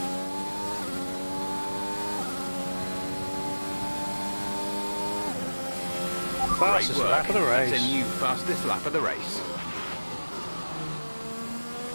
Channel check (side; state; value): both; inverted; correlation -1.00